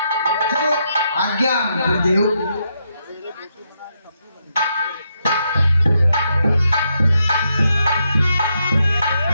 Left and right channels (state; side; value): inverted; both; correlation -0.80